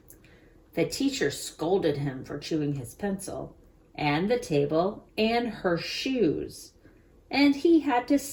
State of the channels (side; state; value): both; identical; correlation 1.00